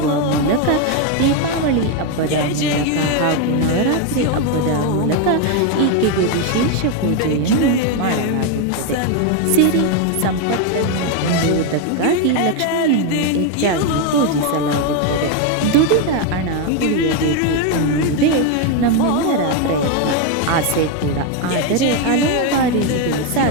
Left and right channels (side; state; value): both; different; correlation 0.02